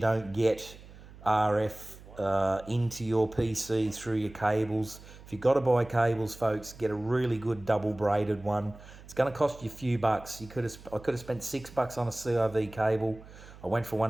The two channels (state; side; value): noise; right; hum, 19 dB below the sound